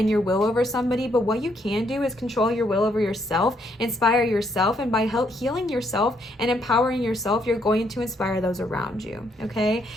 your will over somebody. But what you can do is control your will over yourself, inspire yourself, and by healing yourself and empowering yourself, you're going to inspire those around you, okay?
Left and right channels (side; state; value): both; normal; correlation 0.73